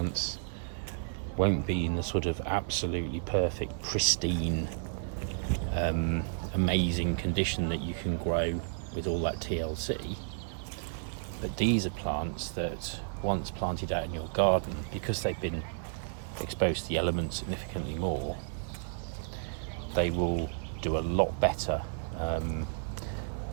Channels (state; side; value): silent; left; 56 dB below the other